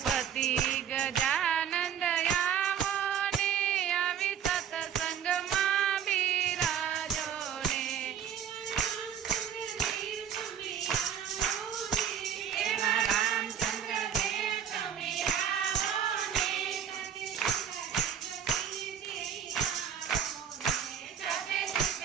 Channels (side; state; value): left; quieter; 8.6 dB